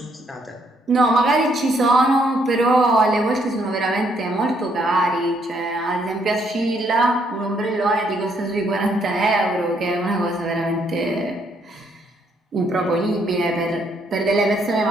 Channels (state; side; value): normal; both; correlation 0.71